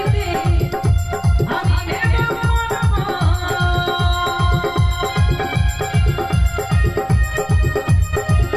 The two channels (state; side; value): identical; both; correlation 1.00